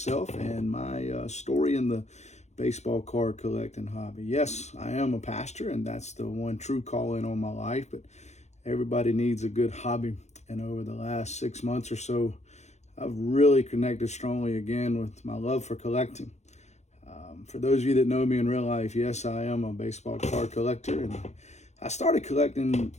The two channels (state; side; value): late; right; 0.33 ms